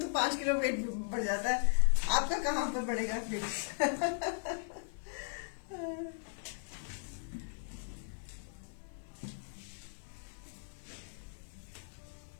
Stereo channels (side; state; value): right; silent; digital silence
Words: 5 किलो वेट बढ़ जाता है। आपका कहाँ पर बढ़ेगा वेट?